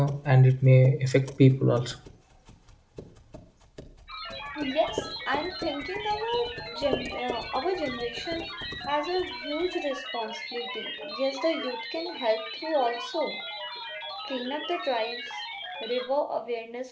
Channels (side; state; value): both; identical; correlation 1.00